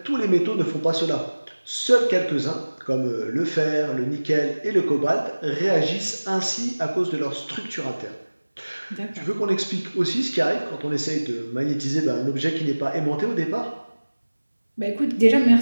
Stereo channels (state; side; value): inverted; both; correlation -1.00